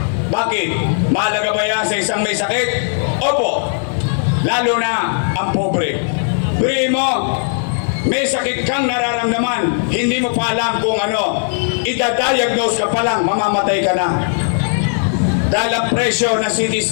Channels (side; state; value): right; silent; digital silence